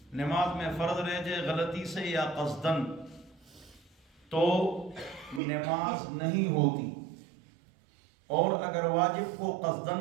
نماز میں فرض رہ جائے غلطی سے یا قصدن تو نماز نہیں ہوتی، اور اگر واجب کو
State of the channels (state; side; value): drops out; left; at 5.4 s